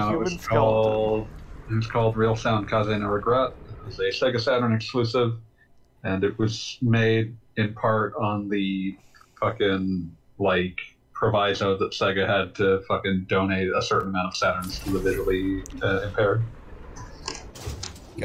human It was called Real Sound Kaze no Regret. It was a Sega Saturn exclusive, and it was made in part on the fucking, like, proviso that Sega had to fucking donate a certain amount of Saturns to the visually impaired.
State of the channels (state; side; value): identical; both; correlation 1.00